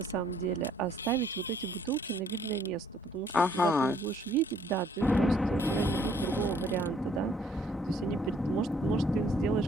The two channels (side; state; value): both; normal; correlation 0.63